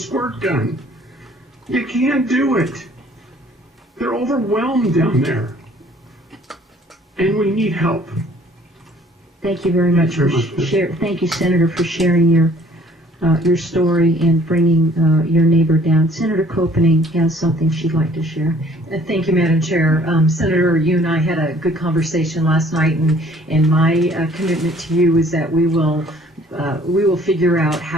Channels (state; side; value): normal; both; correlation 0.57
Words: gun. You can't do it. They're overwhelmed down there. And we need help. Thank you very much for Thank you, Senator, for sharing your story and bringing your neighbor down. Senator Koenig has something she'd like to share. Thank you, Madam Chair. Senator, you and I had a good conversation last night, and my commitment to you is that we will figure out